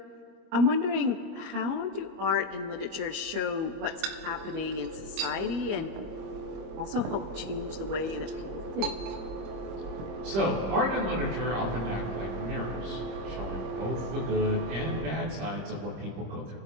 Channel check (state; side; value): late; left; 26 ms